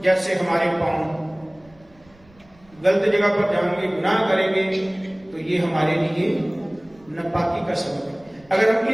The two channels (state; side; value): noise; right; rumble, 29 dB below the sound